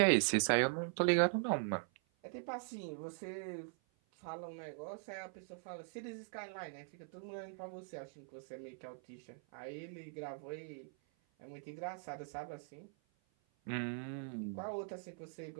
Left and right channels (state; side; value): silent; left; 50 dB below the other